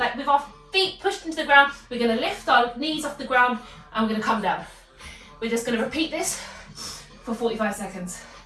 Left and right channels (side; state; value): both; identical; correlation 1.00